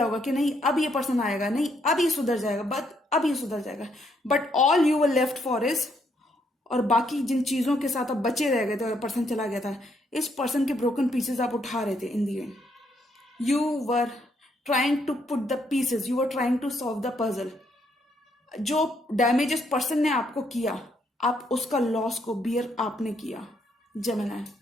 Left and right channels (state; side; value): normal; both; correlation 0.73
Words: होगा कि नहीं अब ये पर्सन आएगा, नहीं अब ये सुधर जाएगा, अब ये सुधर जाएगा। But all you were left for is, और बाकी जिन चीजों के साथ आप बचे रह गए थे और पर्सन चला गया था, इस पर्सन के ब्रोकन पीसेस आप उठा रहे थे। In the end you were trying to put the pieces, you were trying to solve the puzzle. जो डैमेज इस पर्सन ने आपको किया, आप उसका लॉस को बियर आपने किया जेमिनी।